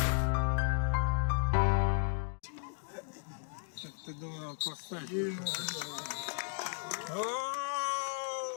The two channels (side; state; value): right; silent; 55 dB below the other